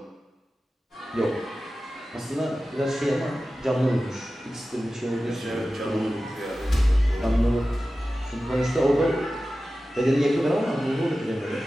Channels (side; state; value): both; normal; correlation 0.95